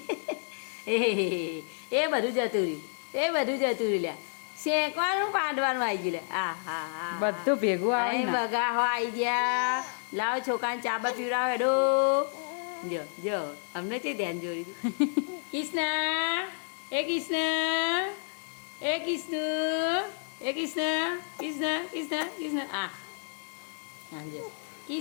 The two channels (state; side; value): silent; right; 58 dB below the other